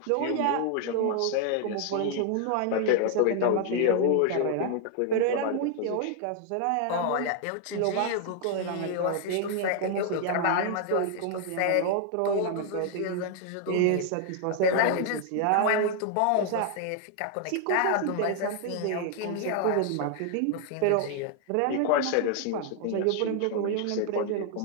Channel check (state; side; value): different; both; correlation 0.00